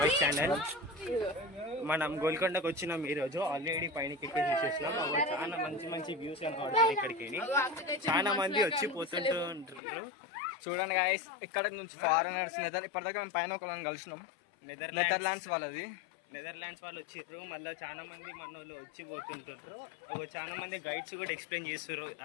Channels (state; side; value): drops out; right; at 9.8 s